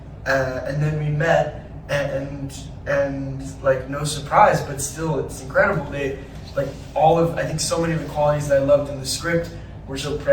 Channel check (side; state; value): both; identical; correlation 1.00